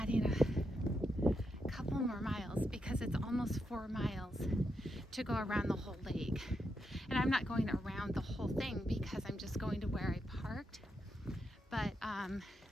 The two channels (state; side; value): normal; both; correlation 0.83